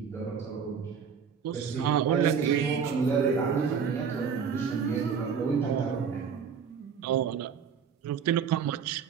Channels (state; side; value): quieter; left; 6.7 dB